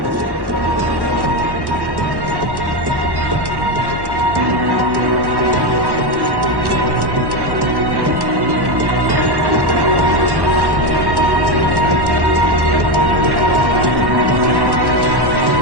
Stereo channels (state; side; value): late; left; 1.1 ms